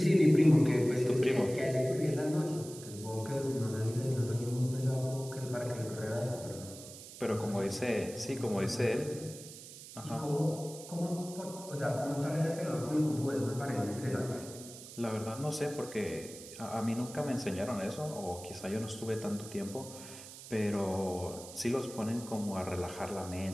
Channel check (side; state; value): right; noise; hiss, 14 dB below the sound